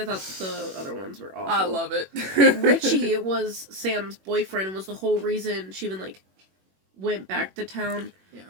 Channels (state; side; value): late; left; 21 ms